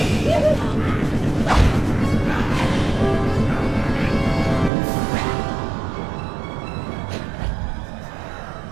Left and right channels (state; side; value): drops out; left; at 4.7 s